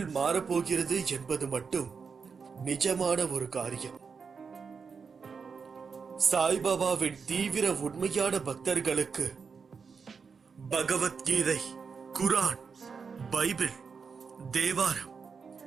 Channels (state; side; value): quieter; left; 5.6 dB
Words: மாறப்போகிறது என்பது மட்டும் நிஜமான ஒரு காரியம். சாய்பாபாவின் தீவிர உண்மையான பக்தர்களுக்கு பகவத்கீதை, குரான், பைபிள், தேவாரம்,